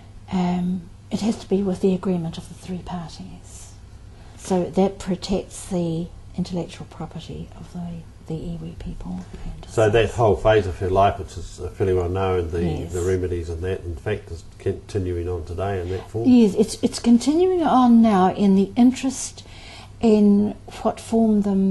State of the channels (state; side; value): identical; both; correlation 1.00